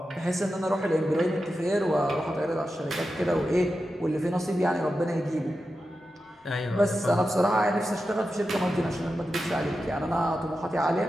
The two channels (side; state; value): both; normal; correlation 0.91